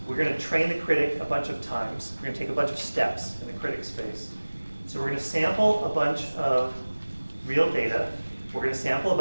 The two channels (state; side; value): inverted; both; correlation -1.00